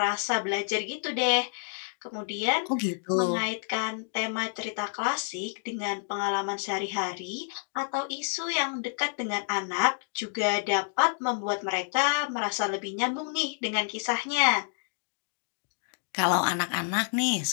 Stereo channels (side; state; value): right; silent; 59 dB below the other